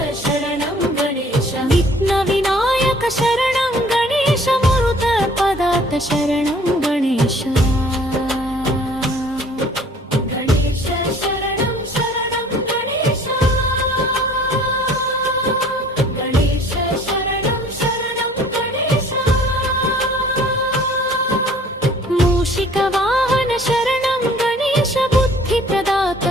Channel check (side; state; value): both; normal; correlation 0.53